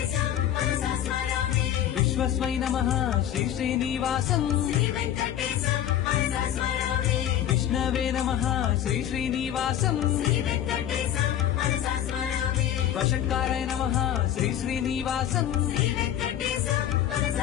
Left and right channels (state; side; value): quieter; right; 11.1 dB